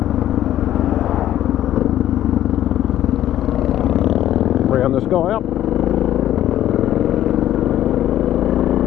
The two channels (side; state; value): right; quieter; 12.3 dB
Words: Round this guy up.